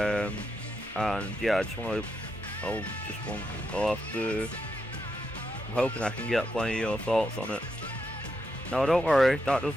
yeah, I'm hoping I can get plenty of your thoughts on it. Now, don't worry, that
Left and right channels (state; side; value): normal; both; correlation 0.83